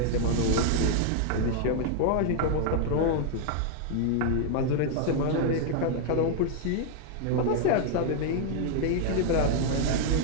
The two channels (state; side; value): different; both; correlation 0.00